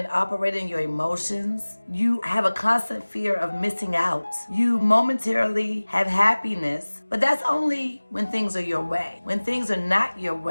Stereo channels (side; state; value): both; inverted; correlation -1.00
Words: operate in your emotions. You have a constant fear of missing out. You momentarily have happiness, but that's only when things are your way. When things are not your